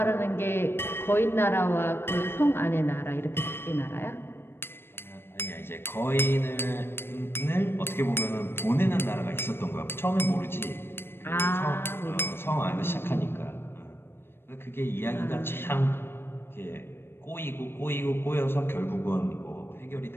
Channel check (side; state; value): right; late; 0.11 ms